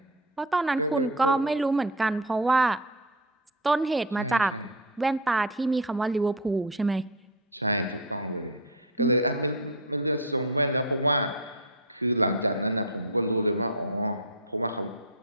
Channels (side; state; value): both; normal; correlation 0.14